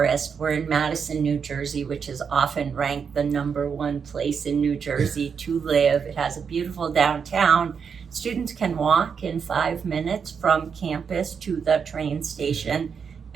We're in Madison, New Jersey, which is often ranked the #1 place in New Jersey to live. It has a beautiful downtown. Students can walk in 5 minutes from campus to the train station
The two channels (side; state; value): left; quieter; 6.5 dB